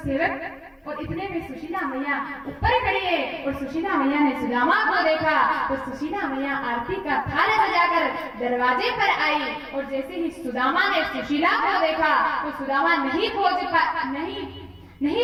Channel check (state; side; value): identical; both; correlation 1.00